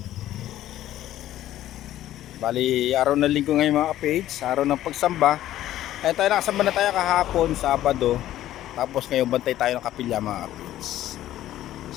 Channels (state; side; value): quieter; right; 13.3 dB